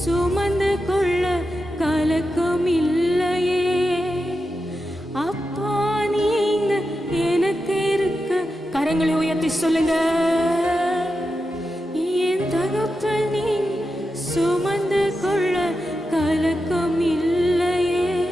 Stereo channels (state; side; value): normal; both; correlation 0.89